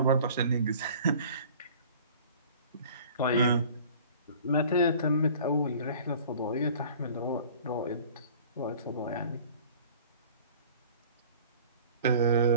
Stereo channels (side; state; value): both; inverted; correlation -0.47